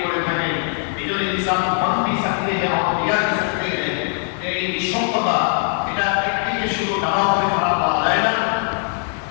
করে থাকেন। এই জন্য ইনসান বন भी सकते हैं और बिगड़ भी सकते हैं। এই নিঃসঙ্গতা এটা একদিকে শুধু ভালো হবে তা বলা যায় না।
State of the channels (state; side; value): silent; right; 56 dB below the other